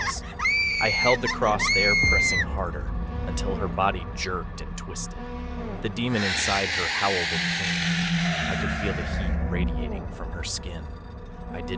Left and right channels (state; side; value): identical; both; correlation 1.00